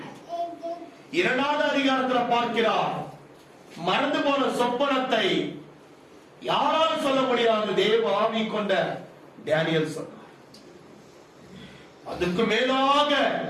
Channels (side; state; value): both; identical; correlation 1.00